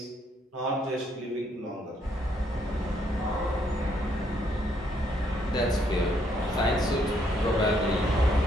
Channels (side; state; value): both; normal; correlation 0.71